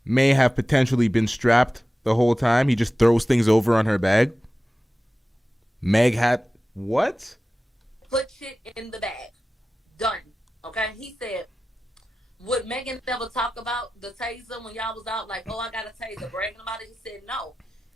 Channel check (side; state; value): both; normal; correlation 0.95